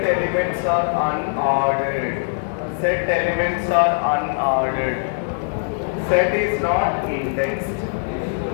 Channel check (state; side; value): silent; right; digital silence